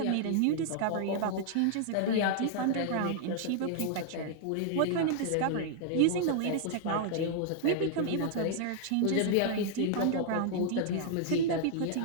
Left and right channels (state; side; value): different; both; correlation -0.01